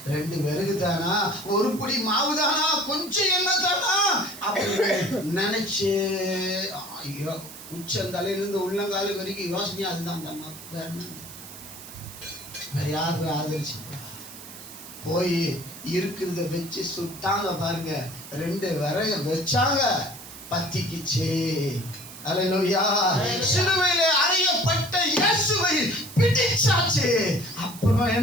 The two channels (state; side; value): noise; right; hiss, 15 dB below the sound